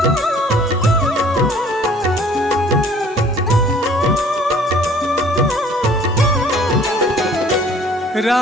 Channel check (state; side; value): normal; both; correlation 0.54